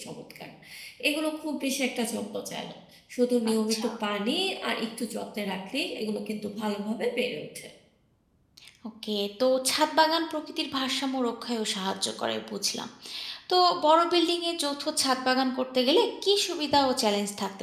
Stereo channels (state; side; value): identical; both; correlation 1.00